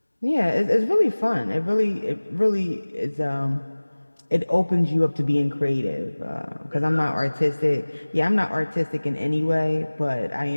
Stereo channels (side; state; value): both; inverted; correlation -1.00